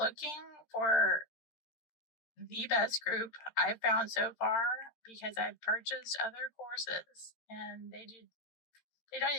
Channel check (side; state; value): right; late; 13 ms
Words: for the best group I've found so far, because I've purchased other courses and they don't